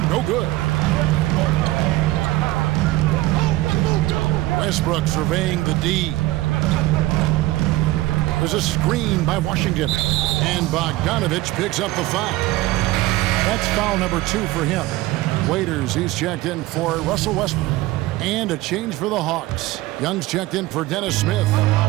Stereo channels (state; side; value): quieter; left; 18.0 dB